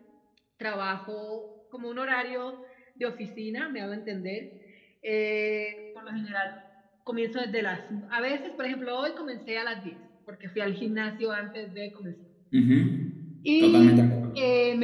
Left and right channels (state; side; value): identical; both; correlation 1.00